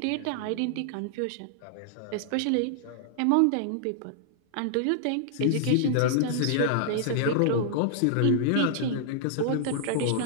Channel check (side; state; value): both; different; correlation -0.01